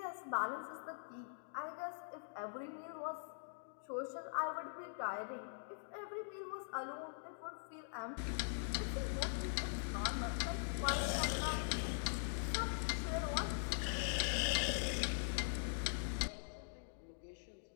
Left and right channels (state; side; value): silent; right; digital silence